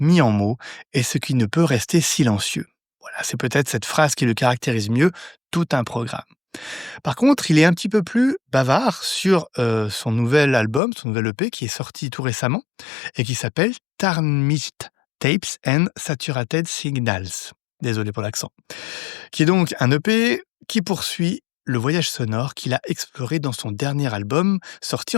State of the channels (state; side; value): drops out; right; at 10.8 s